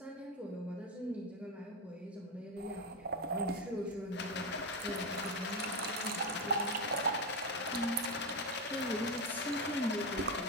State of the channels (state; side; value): normal; both; correlation 0.12